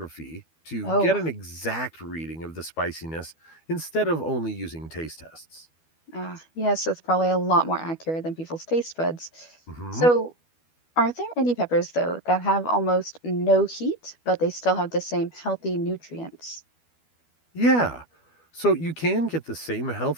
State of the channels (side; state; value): right; late; 12 ms